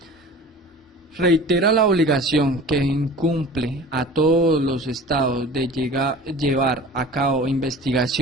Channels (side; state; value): both; normal; correlation 0.40